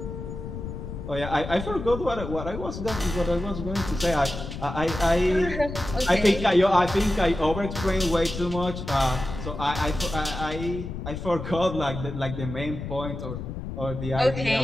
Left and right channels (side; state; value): left; noise; rumble, 8 dB below the sound